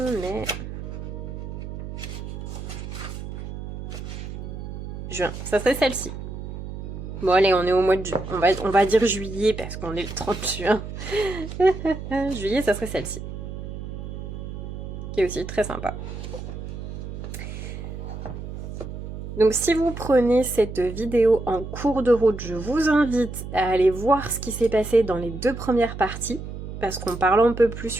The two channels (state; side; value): noise; right; hum, 8 dB below the sound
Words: mai... Juin, ça serait celle-ci. Bon allez, on est au mois de juin. On va dire juillet parce qu'on est le 30 juin. Juillet, ça serait celle-ci. Qui est aussi très sympa. Donc si vous prenez cette vidéo en cours de route, je vous invite à aller voir ce qui s'est passé dans les 2 premières parties. Parce qu'on parle un peu plus,